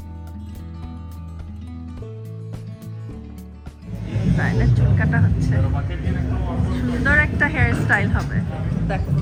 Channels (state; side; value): identical; both; correlation 1.00